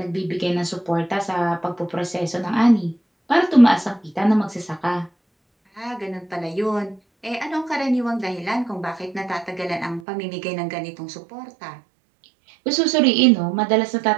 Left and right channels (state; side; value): drops out; left; at 10.0 s